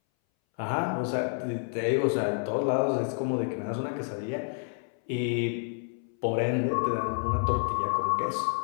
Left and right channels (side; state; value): right; silent; 58 dB below the other